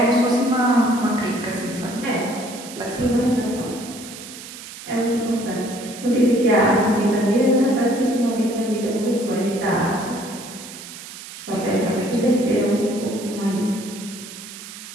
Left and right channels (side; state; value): right; noise; hiss, 13 dB below the sound